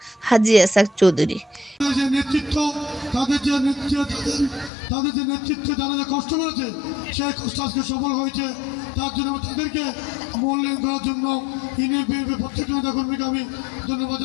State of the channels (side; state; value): right; drops out; at 4.7 s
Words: হাজী এসাক চৌধুরী। তাদের যে নেতৃত্বে যারা যে কষ্ট করেছে সেই কষ্ট আজকে সফল হয়েছে, তার জন্য তাদেরকে মূল্যায়ন করার জন্য প্রত্যেকটা নেতাকর্মীকে আমি ধন্যবাদ